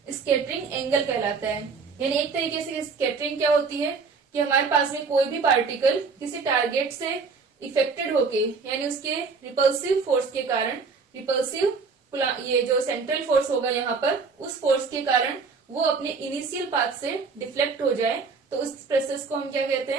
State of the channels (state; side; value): quieter; left; 4.9 dB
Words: स्कैटरिंग एंगल कहलाता है। यानी एक तरीके से स्कैटरिंग क्या होती है कि हमारे पास में कोई भी पार्टिकल किसी टारगेट से इफेक्टेड होके, यानी उसके रिपल्सिव फोर्स के कारण, रिपल्सिव ये जो सेंट्रल फोर्स होगा यहाँ पर, उस फोर्स के कारण वो अपने इनिशियल पाथ से डिफ्लेक्ट हो जाए, तो उस प्रोसेस को हम क्या कहते